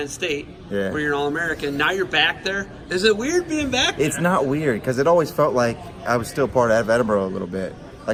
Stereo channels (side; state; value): both; identical; correlation 1.00